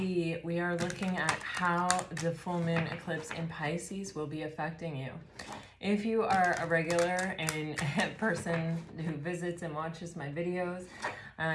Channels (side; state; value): both; identical; correlation 1.00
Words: we are looking at how the full moon eclipse in Pisces will be affecting you. If you are a regular and a person who visits and watches my videos,